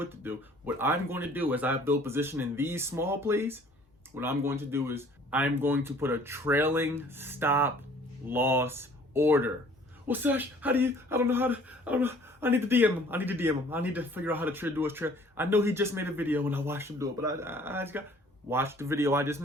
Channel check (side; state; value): both; normal; correlation 0.54